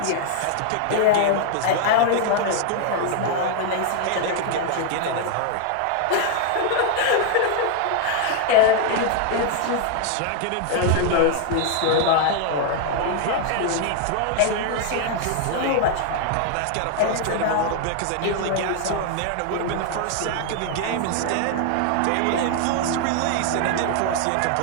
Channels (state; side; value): different; both; correlation 0.00